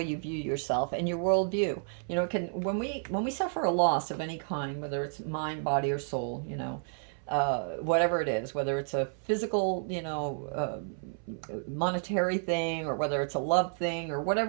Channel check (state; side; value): silent; left; 57 dB below the other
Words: you view yourself and your worldview. Can when we suffer a loss of any kind, whether it's mind, body, or soul, whatever it is, whether it's a physical, monetary thing, or whether it's a love thing, or